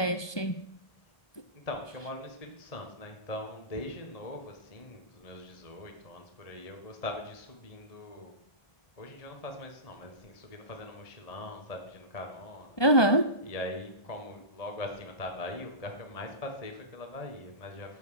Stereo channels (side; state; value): right; late; 1.2 ms